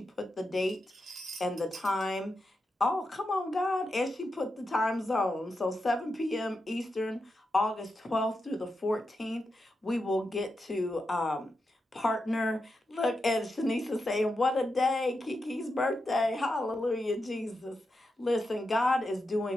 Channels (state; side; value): normal; both; correlation 0.87